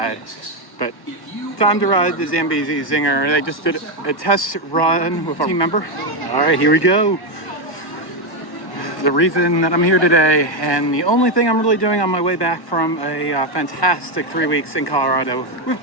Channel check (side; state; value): right; late; 1.1 ms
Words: But time to ride the Zambezi Zinger. They just did a test run with our team member. All right, here we go. The reason that I'm here today, and the only thing I'm really doing on my way back from a fantastic 3 weeks in Colorado with